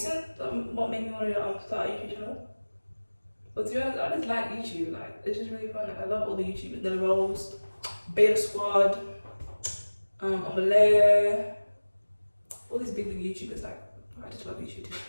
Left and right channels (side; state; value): both; inverted; correlation -1.00